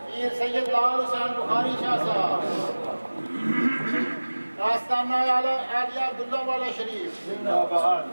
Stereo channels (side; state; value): both; inverted; correlation -1.00